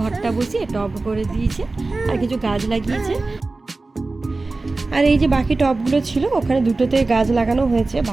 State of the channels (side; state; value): left; quieter; 3.4 dB